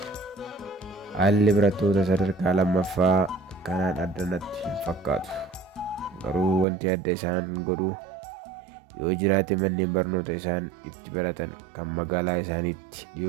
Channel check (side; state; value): left; drops out; at 6.7 s